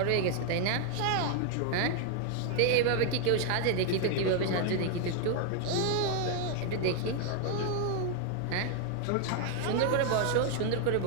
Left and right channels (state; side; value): different; both; correlation 0.00